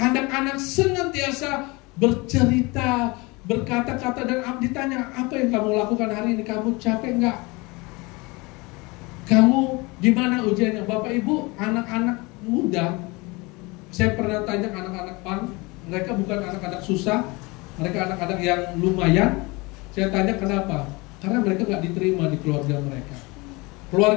senantiasa bercerita, berkata-kata, dan ditanya, apa yang kamu lakukan hari ini? Kamu capek enggak? Kamu gimana ujiannya? Bapak Ibu, anak-anak muda, saya pernah tanya anak-anak PAN, mereka bukan anak-anak susah, mereka anak-anak yang lumayan. Saya tanya kenapa? Karena mereka gak diterima di keluarga mereka.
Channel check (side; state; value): right; quieter; 25.3 dB